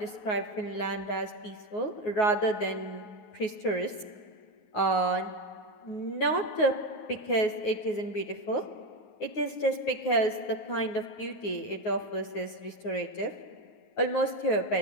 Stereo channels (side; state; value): right; late; 9.5 ms